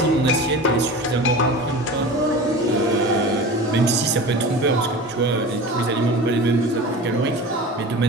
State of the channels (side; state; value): both; normal; correlation 0.34